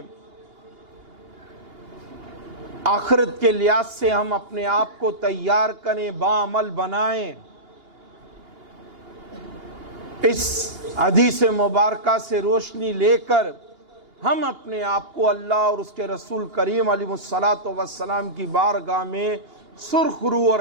آخرت کے لحاظ سے ہم اپنے آپ کو تیار کریں، باعمل بنائیں۔ اس حدیث مبارکہ سے روشنی لے کر ہم اپنے آپ کو اللہ اور اس کے رسول کریم علیہ السلام کی بارگاہ میں سرخرو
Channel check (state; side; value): late; left; 2.8 ms